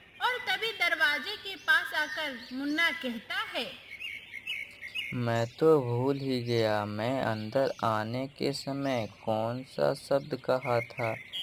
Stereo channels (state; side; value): identical; both; correlation 1.00